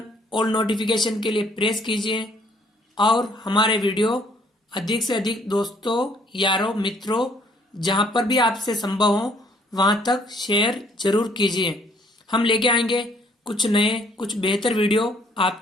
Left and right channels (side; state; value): both; normal; correlation 0.63